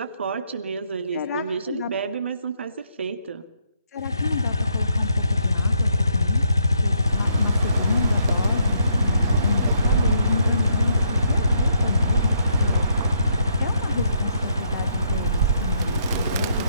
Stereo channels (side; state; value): both; inverted; correlation -0.73